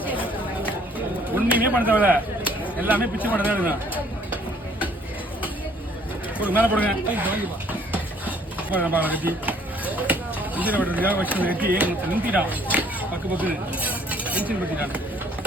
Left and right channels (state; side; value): normal; both; correlation 0.60